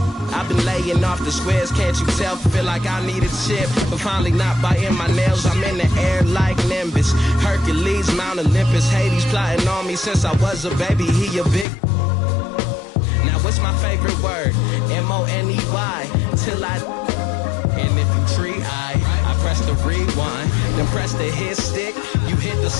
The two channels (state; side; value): drops out; right; at 11.7 s